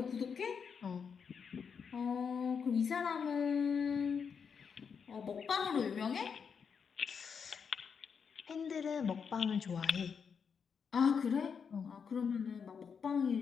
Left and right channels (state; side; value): quieter; right; 6.4 dB